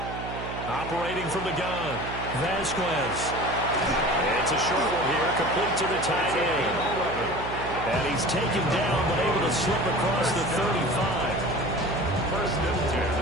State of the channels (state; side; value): noise; right; hum, 8 dB below the sound